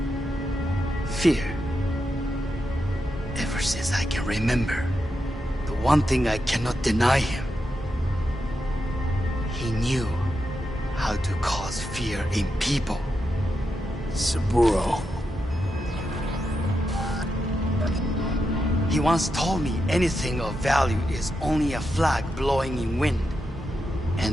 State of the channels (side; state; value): both; normal; correlation 0.86